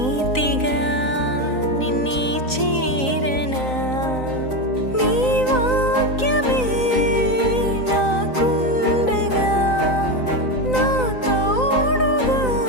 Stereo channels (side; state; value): right; late; 3.9 ms